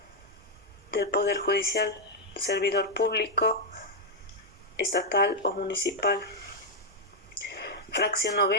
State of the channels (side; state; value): both; normal; correlation -0.01